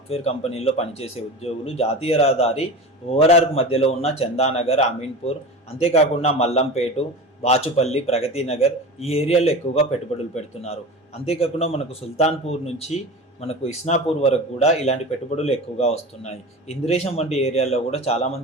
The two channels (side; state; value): both; normal; correlation 0.31